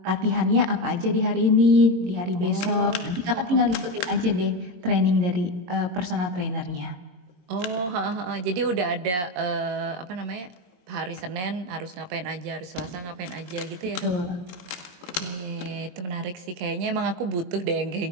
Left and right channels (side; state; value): left; late; 22 ms